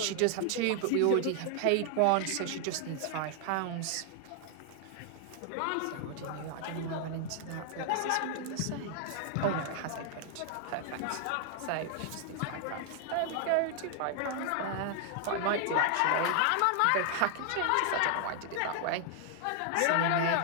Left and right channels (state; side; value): different; both; correlation 0.00